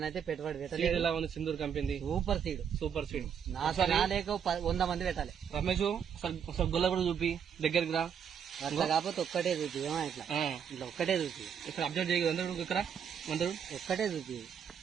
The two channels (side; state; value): left; quieter; 7.8 dB